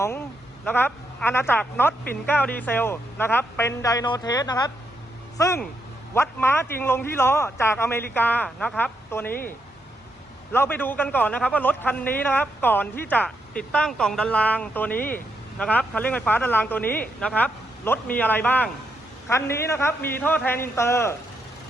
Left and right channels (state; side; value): normal; both; correlation 0.80